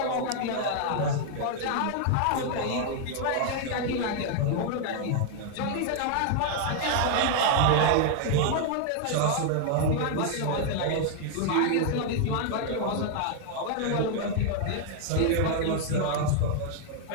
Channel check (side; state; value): both; different; correlation 0.00